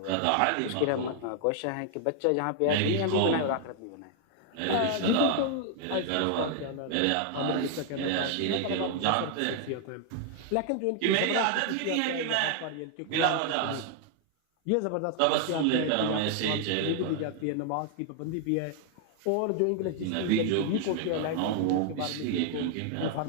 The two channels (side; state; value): both; different; correlation 0.00